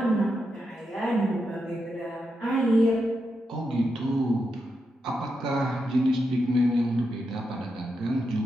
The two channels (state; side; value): normal; both; correlation 0.85